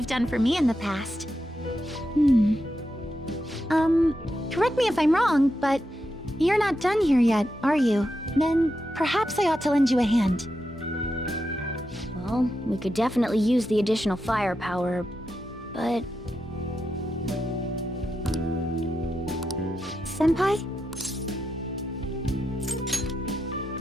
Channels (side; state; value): both; normal; correlation 0.86